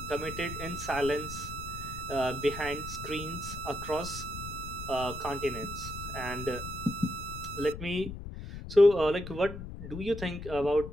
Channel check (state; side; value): noise; left; rumble, 10 dB below the sound